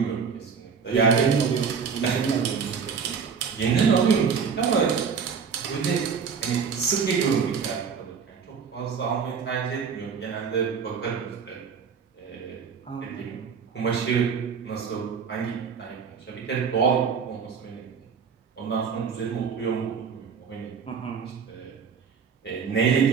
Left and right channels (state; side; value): quieter; left; 6.2 dB